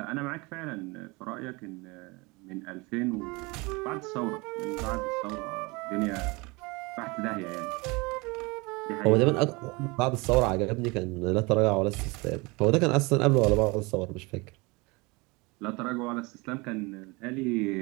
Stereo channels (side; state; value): left; quieter; 26.0 dB